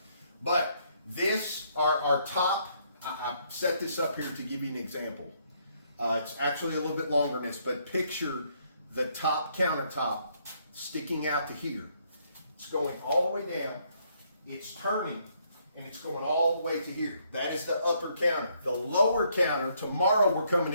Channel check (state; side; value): inverted; both; correlation -0.71